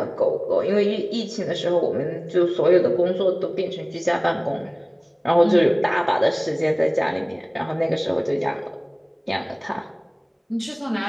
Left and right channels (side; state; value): both; identical; correlation 1.00